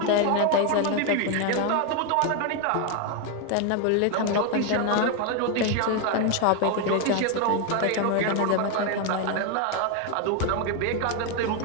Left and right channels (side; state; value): both; different; correlation 0.01